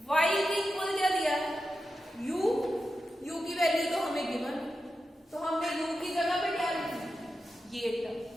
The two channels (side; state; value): both; normal; correlation 0.90